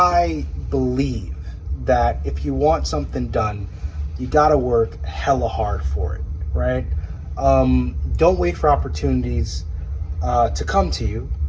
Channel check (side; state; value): both; identical; correlation 1.00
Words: believe that if you want something done, you gotta work hella hard for it, right? Don't wait for opportunities to come to you,